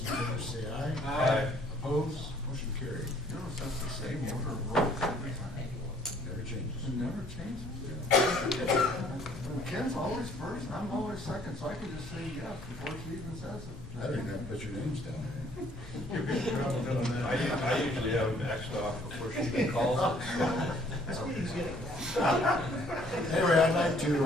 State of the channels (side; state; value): left; noise; rumble, 16 dB below the sound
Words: favor say aye. Aye. Opposed? Motion carried. Notice that's the same order of roll every time. Never changes. It never changes. Ken's always first, and I'm always second, so I can just say yes before she even says it. I don't even have to put your names down there. I usually have it maxed off before she even calls it. Anyway, I'd like to